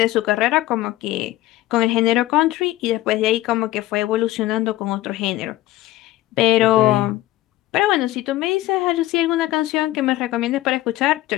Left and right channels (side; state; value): right; quieter; 16.2 dB